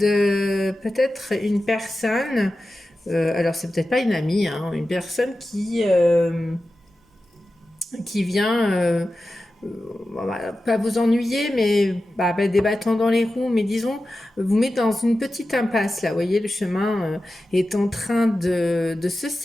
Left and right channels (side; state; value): both; normal; correlation 0.93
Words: peut-être une personne, alors c'est peut-être pas une amie, hein, une personne qui vient pas vous ennuyer, mais des bâtons dans les roues, mais disons, vous mettez dans une petite impasse, là, vous voyez, le chemin est en train de se